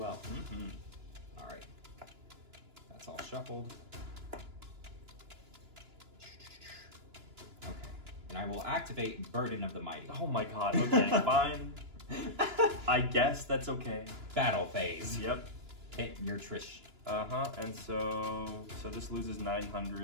Mm-hmm. All right. That's all shuffled. Okay. And I will activate Burden of the Mighty. Oh my god, okay, fine. I guess that's okay. Battle phase. Yep. Hit your Trish. And so this loses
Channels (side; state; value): left; late; 2.9 ms